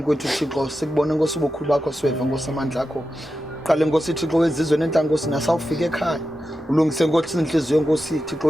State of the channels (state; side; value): normal; both; correlation 0.90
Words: kwethu Thixo sikubone Nkosi ubukhulu bakho siweva Nkosi amandla akho qale Nkosi Thixo wezizwe nenhlanga Nkosi nasawufika ekhaya ulungise Nkosi inhliziyo Nkosi Thixo